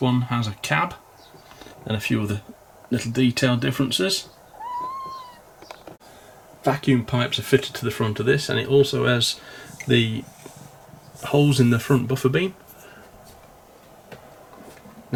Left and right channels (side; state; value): both; identical; correlation 1.00